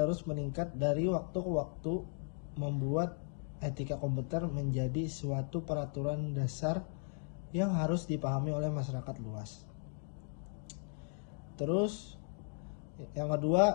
meningkat dari waktu ke waktu membuat etika komputer menjadi suatu peraturan dasar yang harus dipahami oleh masyarakat luas. Terus, yang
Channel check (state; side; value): silent; right; 53 dB below the other